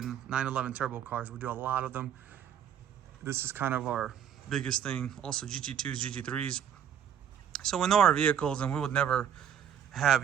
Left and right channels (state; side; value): quieter; left; 9.0 dB